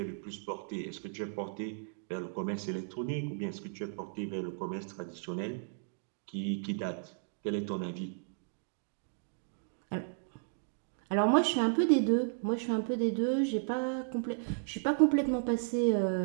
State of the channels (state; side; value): silent; left; digital silence